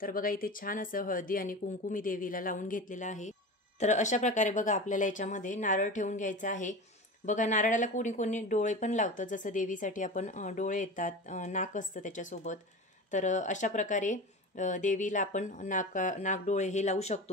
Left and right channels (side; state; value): both; normal; correlation 0.30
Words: बघा इथे छान असं हळदी आणि कुंकू मी देवीला लावून घेतलेलं आहे। तर अशा प्रकारे बघा आपल्याला याच्यामध्ये नारळ ठेवून घ्यायचा आहे। बघा नारळाला कोणी कोणी डोळे पण लावतं, जसं देवीसाठी आपण डोळे येतात, नाक असतं त्याच्यासोबत। तर अशा प्रकारे देवीला आपण नाक डोळे हे लावू